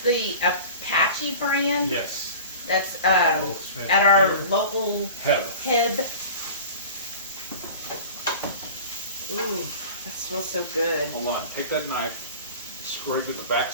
the Apache brand. Yes. That's at our local Heb. Ooh, that smells so good. Hold on. Take that knife. Scrape at the back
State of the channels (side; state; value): both; inverted; correlation -0.38